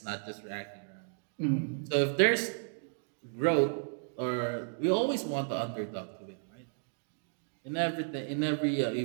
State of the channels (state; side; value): silent; left; digital silence